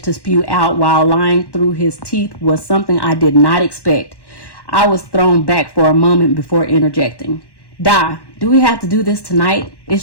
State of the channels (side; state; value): right; late; 1.1 ms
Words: to spew out while lying through his teeth was something I did not expect. I was thrown back for a moment before interjecting. Do we have to do this tonight?